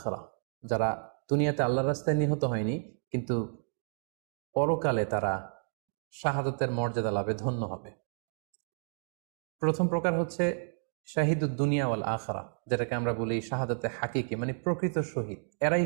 যারা দুনিয়াতে আল্লাহর রাস্তায় নিহত হয়নি কিন্তু পরকালে তারা শাহাদাতের মর্যাদা লাভে ধন্য হবে। প্রথম প্রকার হচ্ছে শাহিদুদ দুনিয়া ওয়াল আখিরা, যেটাকে আমরা বলি শাহাদাতে হাকিকি, মানে প্রকৃত শহীদ। এরাই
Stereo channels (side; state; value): left; silent; digital silence